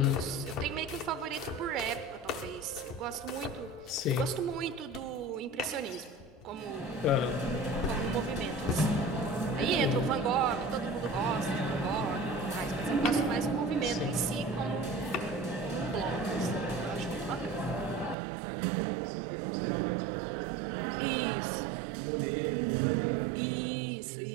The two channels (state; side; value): drops out; left; at 18.2 s